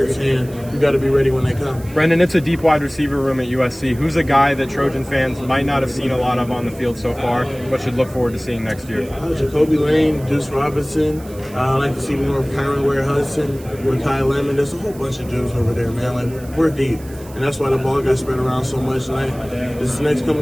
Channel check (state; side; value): noise; right; hiss, 21 dB below the sound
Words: and you got to be ready when they come. Brenden, it's a deep wide receiver room at USC. Who's a guy that Trojan fans might not have seen a lot of on the field so far, but should look forward to seeing next year? Jacoby Lane, Deuce Robinson. I like to see more of Kyron Ware-Hudson, Makai Lemon. There's a whole bunch of dudes over there, man. Like, we're deep. And that's why the ball got spread around so much. And this next